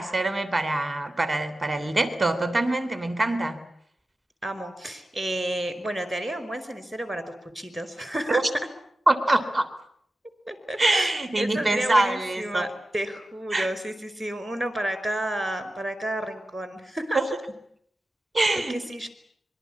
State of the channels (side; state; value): both; normal; correlation 0.94